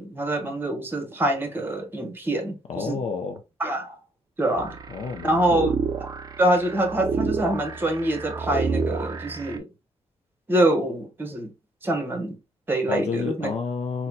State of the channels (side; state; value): both; normal; correlation 0.67